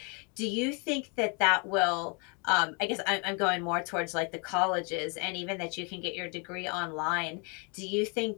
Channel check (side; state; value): right; quieter; 34.6 dB